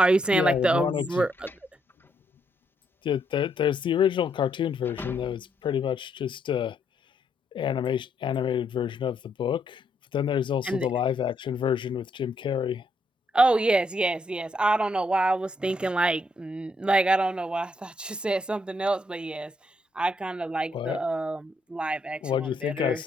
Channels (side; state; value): both; normal; correlation 0.75